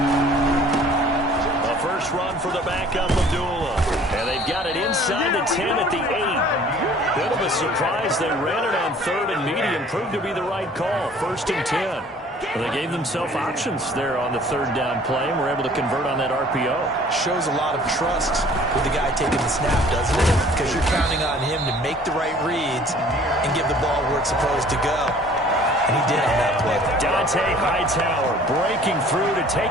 A first run for the backup, Abdullah. And they've got it inside the 10 at the 8. Bit of a surprise. They ran it on third and medium. Proved to be the right call. First and 10. Well, they gave themselves options there on the third down play and were able to convert on that RPO. Shows a lot of trust with the guy taking the snap, doesn't it? Because you're counting on him to make the right reads and give the ball where it's supposed to go. And he did on that play. Dante Hightower breaking through to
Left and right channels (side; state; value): both; normal; correlation 0.52